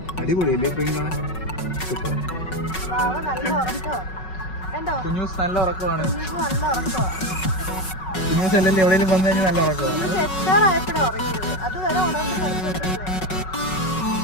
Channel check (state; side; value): late; right; 5.4 ms